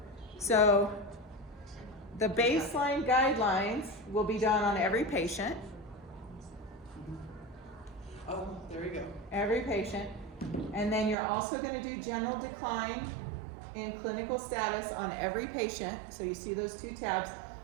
So the baseline guidelines will be done on every patient. Oh, there we go. Every patient. And then you're also going to do general decline in clinical status on every patient. So you see those two tabs,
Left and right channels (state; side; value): drops out; left; at 11.2 s